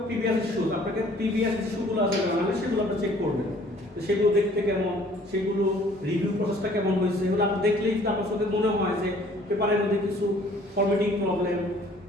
প্রিভিয়াস ইস্যুজ, আপনাকে প্রিভিয়াস ইস্যুগুলো আছে মানে সেগুলো আপনি চেক করবেন, তো সেগুলো দেখতে কেমন, সেগুলো রিভিউ প্রসেসটা কেমন হয়েছে, এগুলো আপনি দেখলেই আপনার চোখে মনে হয় যে পেপারের মধ্যে কিছু ফরম্যাটিং প্রবলেম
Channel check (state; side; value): normal; both; correlation 0.55